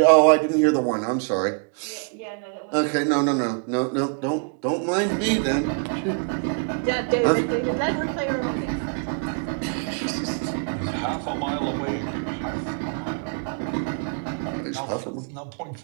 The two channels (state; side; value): quieter; left; 39.0 dB